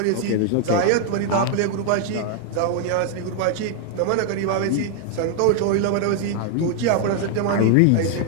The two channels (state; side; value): different; both; correlation 0.00